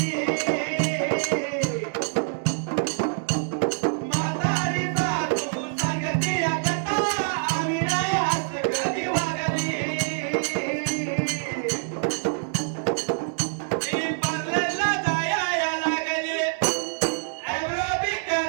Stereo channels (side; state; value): left; silent; digital silence